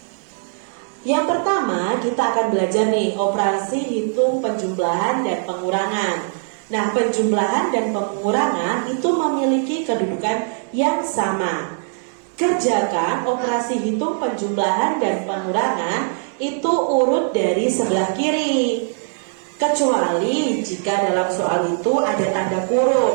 Yang pertama, kita akan belajar nih operasi hitung penjumlahan dan pengurangan. Nah, penjumlahan dan pengurangan itu memiliki kedudukan yang sama. Kerjakan operasi hitung penjumlahan dan pengurangan itu urut dari sebelah kiri. Kecuali jika dalam soal itu ada tanda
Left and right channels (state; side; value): silent; left; 60 dB below the other